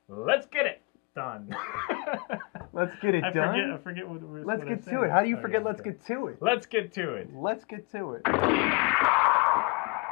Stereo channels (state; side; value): quieter; right; 29.0 dB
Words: Let's get it done. Let's get it I done. forget what we're Let's get to it. How do you forget let's get to it? Let's get to it. Let's get to it.